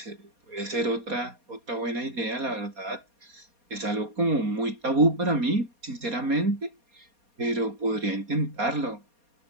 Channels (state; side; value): late; left; 4.2 ms